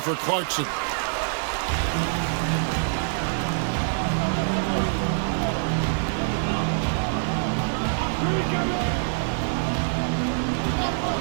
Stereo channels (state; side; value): silent; left; 56 dB below the other